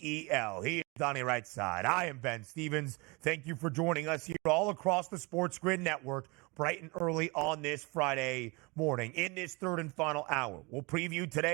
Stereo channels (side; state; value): left; quieter; 27.4 dB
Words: He is Donnie right side. I am Ben Stevens. Thank you for joining us here all across the SportsGrid network bright and early on this Friday morning. In this third and final hour, we'll preview